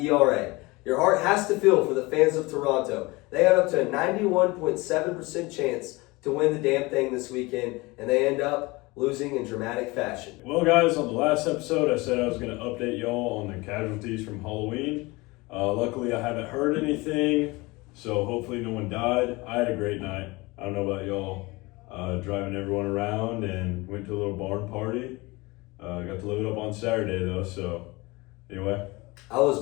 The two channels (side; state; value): right; quieter; 23.4 dB